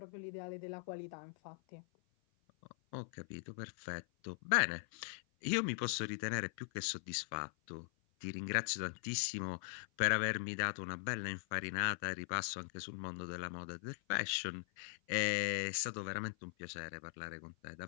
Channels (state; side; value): silent; right; 50 dB below the other